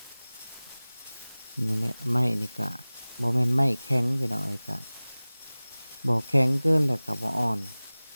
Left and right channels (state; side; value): inverted; both; correlation -0.99